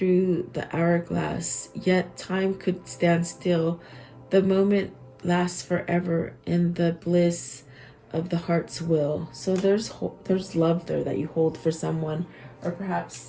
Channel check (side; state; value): both; identical; correlation 1.00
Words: the hourglass, yet time could stand still. The moment lasts forever in the bliss of the heart's will. So there's love there that you hold for someone, or